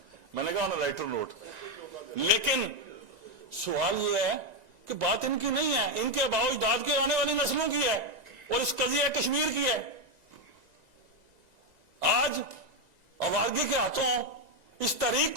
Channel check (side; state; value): left; late; 2.0 ms